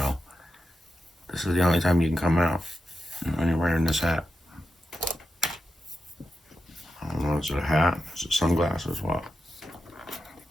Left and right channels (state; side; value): normal; both; correlation 0.89